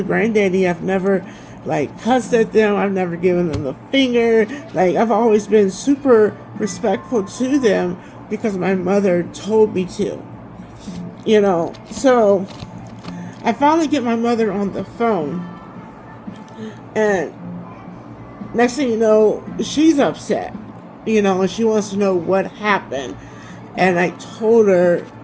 granddaddy. I've never cussed at them. I've never given them the finger. Like, I've always been super respectful to them, because my mother told me to. So I finally get my mother on the phone, and next thing you know, she's upset, and she wants to know what happened. And I told her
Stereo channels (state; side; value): identical; both; correlation 1.00